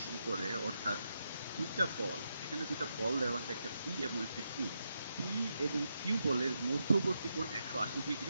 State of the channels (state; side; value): inverted; both; correlation -0.84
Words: করে, অর্থাৎ দুইটা বল, এখানে দুইটা বল দেওয়া আছে, একটা পি এবং একটা কিউ। পি এবং কিউ বলের মধ্যবর্তী কোণ 180